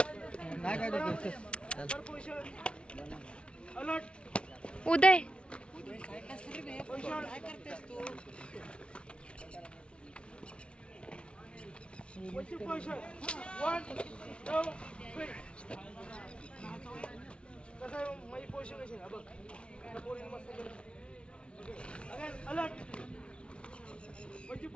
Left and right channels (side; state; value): right; late; 0.059 ms